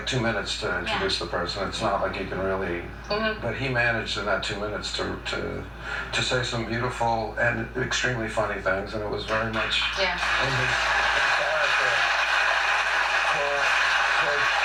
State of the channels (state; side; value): identical; both; correlation 1.00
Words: 2 minutes to introduce the person. It's not like you can really. But he managed in that 2 minutes to say some beautiful and extremely funny things, and it was very much in his character.